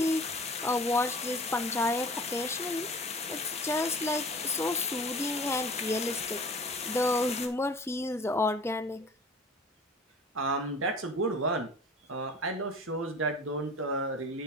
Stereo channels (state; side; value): normal; both; correlation 0.44